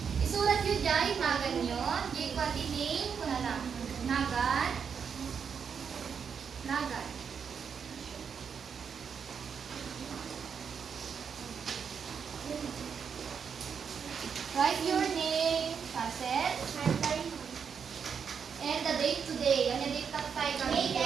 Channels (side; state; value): left; quieter; 6.7 dB